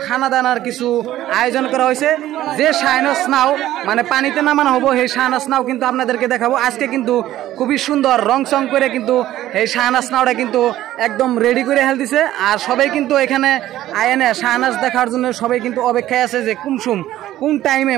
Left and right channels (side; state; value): left; quieter; 13.9 dB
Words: খানা দানার কিছু আয়োজন করা হয়েছে। যে শাহনাজ নাও মানে পানিতে নামানো হবো সেই শাহনাজ নাও কিন্তু আপনাদেরকে দেখাবো। আজকে কিন্তু খুবই সুন্দর রং চং করে কিন্তু এই শাহনাজ নাওটা কিন্তু একদম রেডি করে হেল দিছে। আর সবাই কিন্তু এখানে আয়নে শাহনাজ দেখার জন্য সবাই কিন্তু অপেক্ষায় আছে যে কোন টাইমে